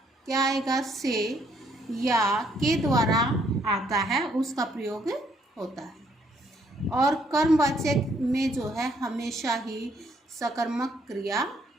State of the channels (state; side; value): normal; both; correlation 0.69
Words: क्या आएगा? से या के द्वारा आता है, उसका प्रयोग होता है। और कर्मवाच्य में जो है हमेशा ही सकर्मक क्रिया